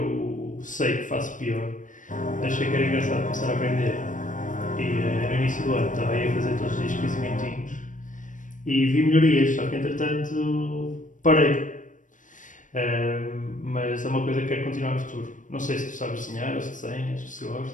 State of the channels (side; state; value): right; late; 0.37 ms